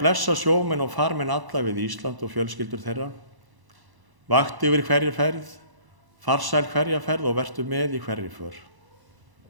sjómenn og farmenn alla við Ísland og fjölskyldur þeirra. Vakti yfir hverja ferð, farsæl hverja ferð og vertu með í hverri för.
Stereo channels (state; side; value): late; left; 1.0 ms